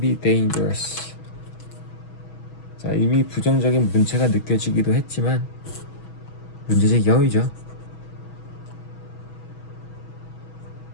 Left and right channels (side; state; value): right; late; 6.2 ms